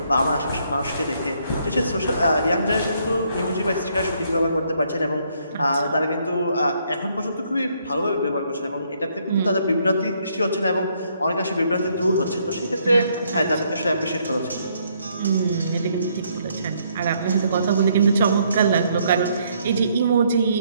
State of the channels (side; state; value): both; inverted; correlation -0.70